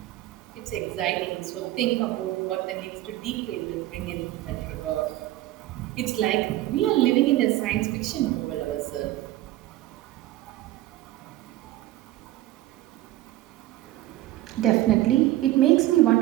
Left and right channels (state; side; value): quieter; left; 15.5 dB